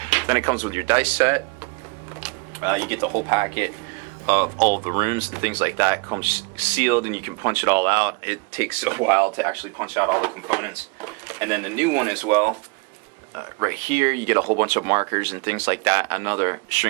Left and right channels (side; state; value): left; quieter; 29.1 dB